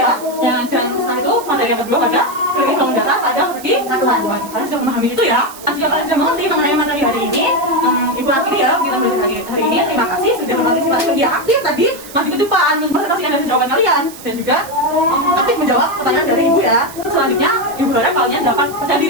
Dan setelah itu materi yang kedua pada kredit bangun data pada persegi satuan. Kalian sudah memahami itu ya. Jika kalian sudah mengerti mengenai materi hari ini, ibu akhiri ya kita belajar hari ini. Terima kasih sudah berpartisipasi media aktif tadi. Maju ke depan mempresentasikan dari jawaban kalian dan juga aktif menjawab pertanyaan dari ibu ya. Selanjutnya ibu harap kalian dapat percaya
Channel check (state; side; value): noise; right; hiss, 16 dB below the sound